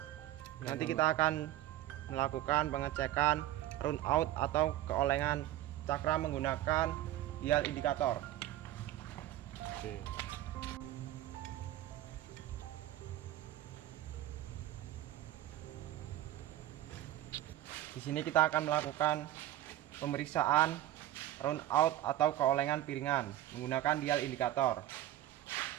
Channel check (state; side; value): quieter; left; 13.9 dB